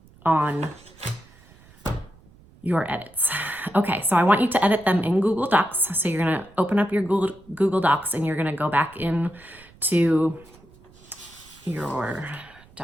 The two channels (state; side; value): noise; right; rumble, 26 dB below the sound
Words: your edits. Okay, so I want you to edit them in Google Docs. So you're gonna open up your Google Docs and you're gonna go back into your